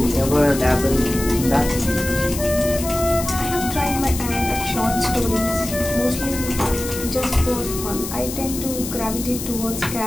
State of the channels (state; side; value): noise; left; hiss, 8 dB below the sound